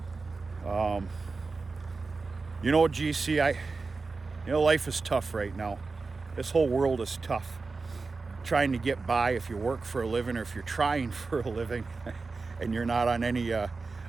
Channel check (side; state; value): left; quieter; 4.1 dB